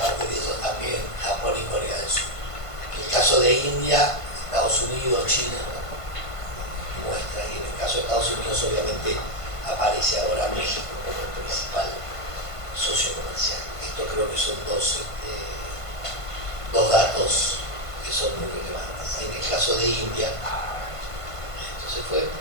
de ellos también, Japón y Corea del Sur. En el caso de India, Estados Unidos, China, muestra, y en el caso de Estados Unidos obviamente aparece ahora México como el principal socio comercial. Esto creo que son dos datos que son muy relevantes. En el caso de India, esto se fue. En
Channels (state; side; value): late; right; 1.5 ms